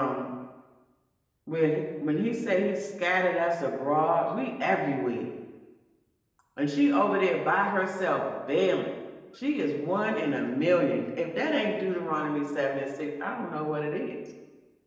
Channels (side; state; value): both; identical; correlation 1.00